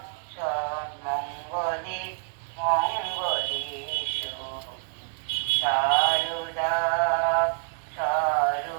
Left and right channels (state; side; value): silent; left; 60 dB below the other